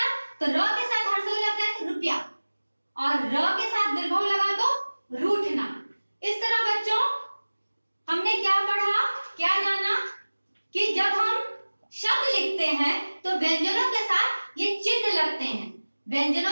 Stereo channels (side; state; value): both; inverted; correlation -1.00